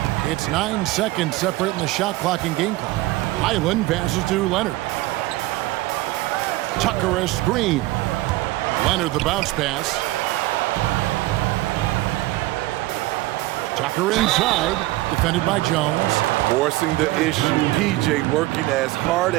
It's 9 seconds separating the shot clock and game clock. Highland passes to Leonard. Tucker a screen. Leonard the bounce pass. Tucker inside, defended by Jones. Forcing the issue. PJ working as hard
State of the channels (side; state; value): left; quieter; 18.5 dB